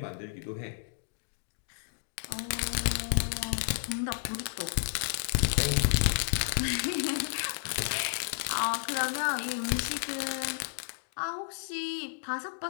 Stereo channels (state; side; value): silent; right; digital silence